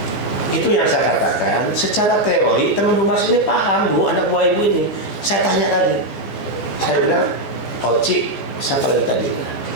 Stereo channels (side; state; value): right; late; 14 ms